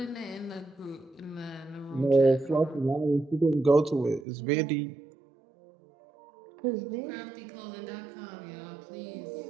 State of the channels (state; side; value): drops out; left; at 4.2 s